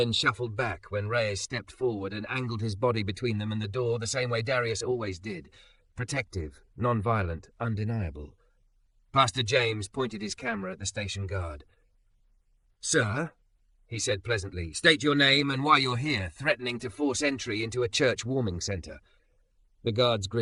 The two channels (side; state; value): both; identical; correlation 1.00